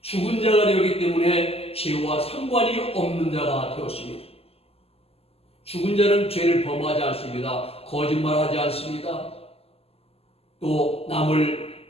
죽은 자가 되었기 때문에 죄와 상관이 없는 자가 되었습니다. 죽은 자는 죄를 범하지 않습니다. 거짓말하지 않습니다. 또 남을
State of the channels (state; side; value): late; right; 0.29 ms